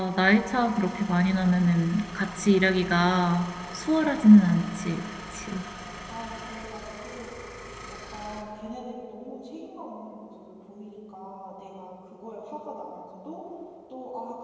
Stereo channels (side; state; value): both; identical; correlation 1.00